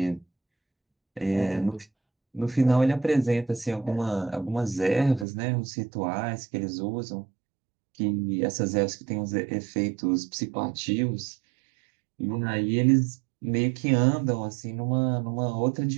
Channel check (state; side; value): drops out; left; at 5.2 s